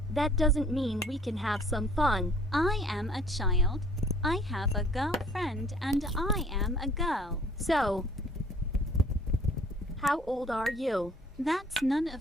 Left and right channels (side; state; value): both; normal; correlation 0.56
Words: That doesn't mean we can have some fun. I am a child. I have a girlfriend and I am a girl. So, how old are you? That's none